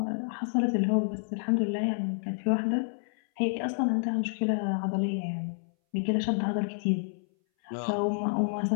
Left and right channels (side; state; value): right; silent; 58 dB below the other